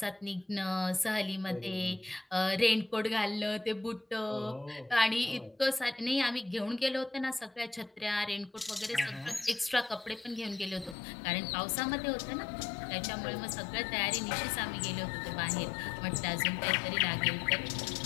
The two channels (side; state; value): right; drops out; at 11.0 s